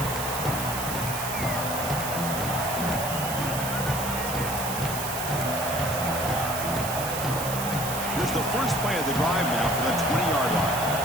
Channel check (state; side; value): noise; right; hiss, 6 dB below the sound